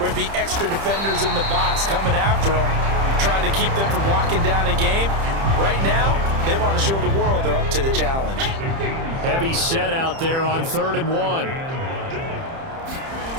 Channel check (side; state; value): left; late; 30 ms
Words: it'd be extra defenders in the box coming after them, trying to keep them from locking down a game. Right now, they want to show the world they're up to the challenge. Heavy set out there on 3rd and 1.